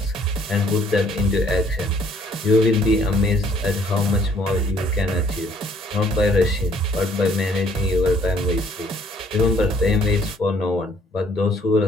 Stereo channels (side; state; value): both; normal; correlation 0.62